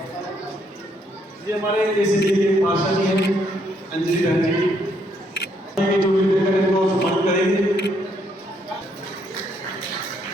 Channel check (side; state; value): both; normal; correlation 0.72